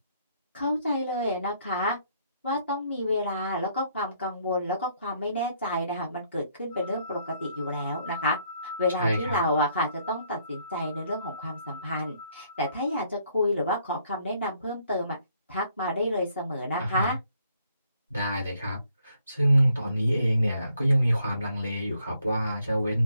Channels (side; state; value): both; inverted; correlation -0.69